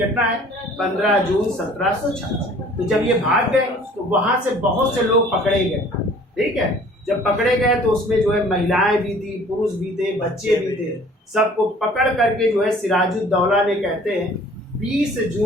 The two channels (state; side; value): normal; both; correlation 0.52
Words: है, 15 जून 1756। तो जब ये भाग गए तो वहाँ से बहुत से लोग पकड़े गए, ठीक है। जब पकड़े गए तो उसमें जो है महिलाएं भी थी, पुरुष भी थे, बच्चे भी थे, सबको पकड़ करके जो है सिराजुद्दौला ने कहते हैं 20